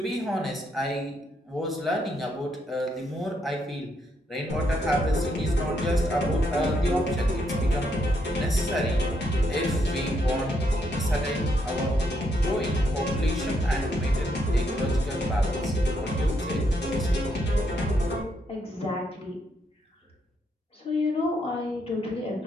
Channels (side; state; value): both; normal; correlation 0.76